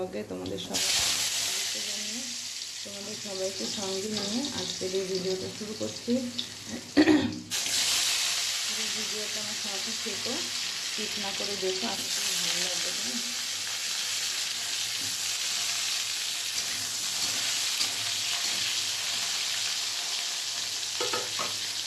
তোমাদের সবাইকে জানিয়ে তোমাদের সবাইকে সঙ্গে নিয়ে আজকের এই ভিডিওটা শুরু করছি। পুরো ভিডিওটা আমার সাথে থেকো, স্কিপ না করে দেখো, আশা করি ভালো লাগবে। কেন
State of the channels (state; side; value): identical; both; correlation 1.00